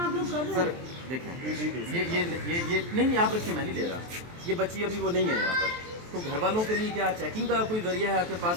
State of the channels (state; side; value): late; left; 23 ms